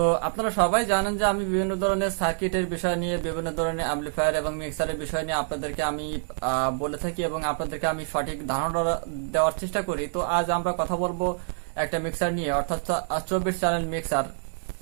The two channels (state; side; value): silent; left; digital silence